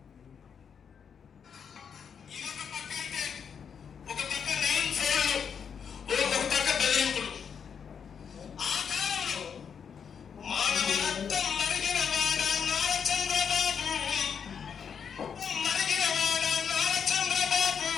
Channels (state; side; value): quieter; right; 7.1 dB